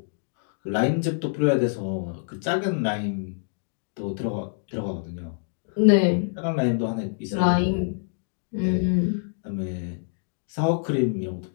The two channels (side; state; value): right; silent; digital silence